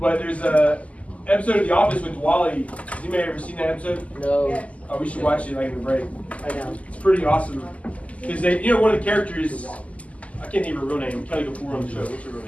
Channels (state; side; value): late; right; 0.068 ms